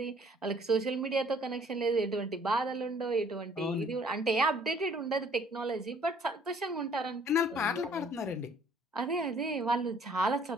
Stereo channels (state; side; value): normal; both; correlation 0.59